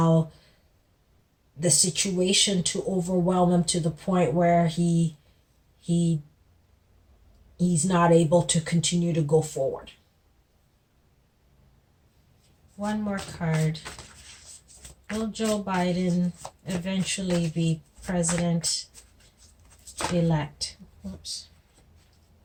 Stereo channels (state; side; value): identical; both; correlation 1.00